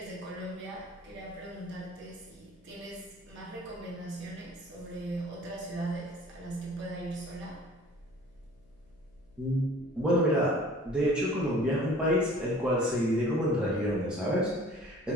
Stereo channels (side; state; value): left; noise; hum, 30 dB below the sound